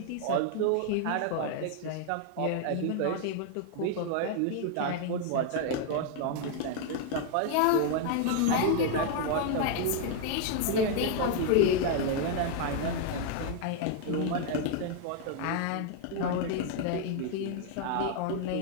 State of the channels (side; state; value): both; different; correlation 0.00